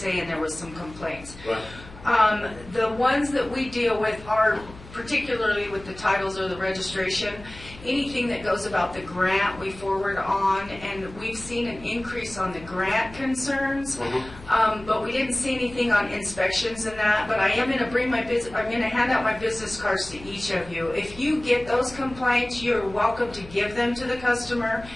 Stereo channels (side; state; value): left; noise; hum, 18 dB below the sound